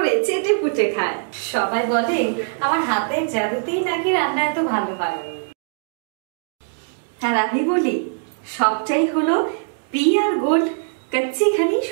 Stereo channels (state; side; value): silent; left; digital silence